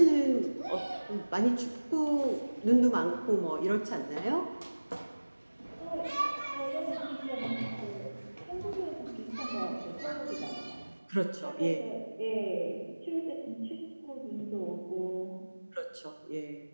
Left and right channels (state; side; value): inverted; both; correlation -1.00